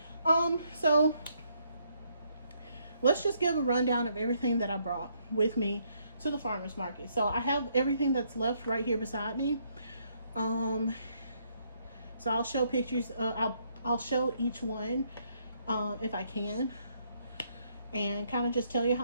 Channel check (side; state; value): both; inverted; correlation -0.72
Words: So let's just give a rundown of everything that I brought with me to the farmers market. So I have everything that's left right here beside me. So I'll show pictures. I'll show each one if I can, and kind of just tell you